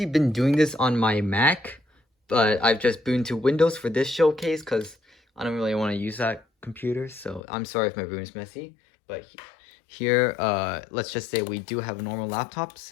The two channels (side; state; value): right; drops out; at 7.4 s